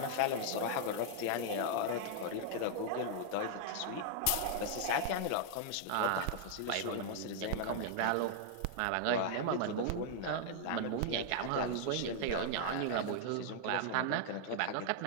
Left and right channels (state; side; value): different; both; correlation -0.01